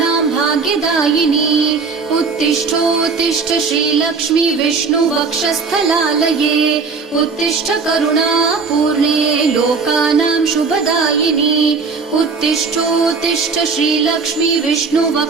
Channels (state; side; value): quieter; left; 4.8 dB